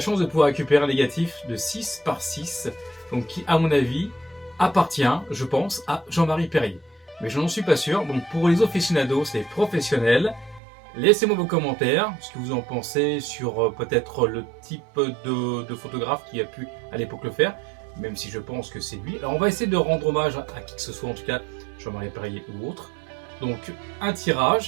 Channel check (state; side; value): drops out; left; at 10.6 s